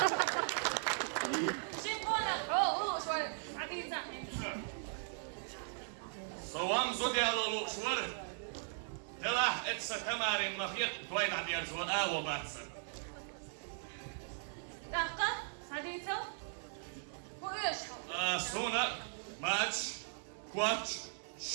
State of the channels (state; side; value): silent; left; 52 dB below the other